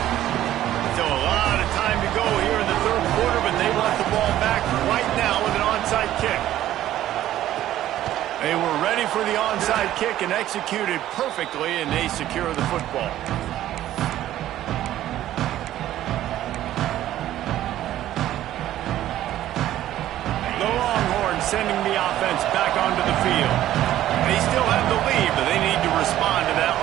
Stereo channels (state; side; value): quieter; left; 13.1 dB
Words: So a lot of time to go here in the third quarter, but they want the ball back right now with an onside kick. They were ready for the onside kick and executed perfectly, and they secure the football. The Longhorns sending the offense back onto the field. They still have the lead, but they need to respond to that